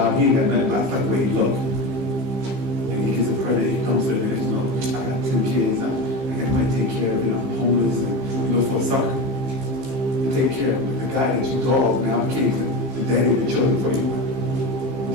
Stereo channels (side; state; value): left; late; 15 ms